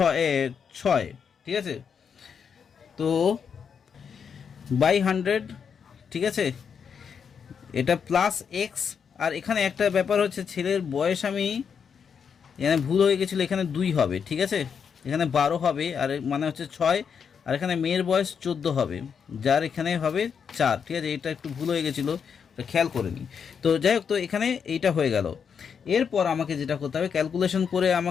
6। ঠিক আছে, তো বাই 100। ঠিক আছে, এটা প্লাস এক্স। আর এখানে একটা ব্যাপার হচ্ছে, ছেলের বয়স আমি এখানে ভুল হয়ে গেছিলো, এখানে 2 হবে। ঠিক আছে, এখানে 12 হবে, আর মানে হচ্ছে 6, আর এখানে মেয়ের বয়স 14 হবে, যার এখানে হবে 4। ঠিক আছে, এটা একটু ভুল হয়ে গেছিলো, এটা খেয়াল করে নিই। তো যাই হোক, তো এখানে এইটা হয়ে গেল। এরপর আমাকে যেটা করতে হবে, ক্যালকুলেশন করে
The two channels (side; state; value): right; quieter; 6.8 dB